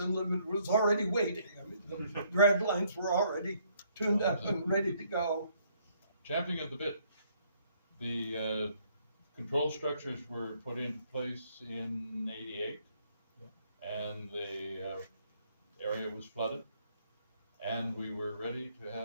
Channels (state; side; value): inverted; both; correlation -0.67